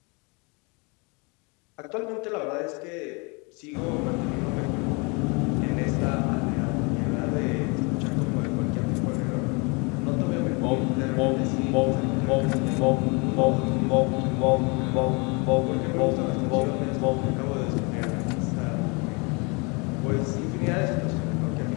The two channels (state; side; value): quieter; right; 30.7 dB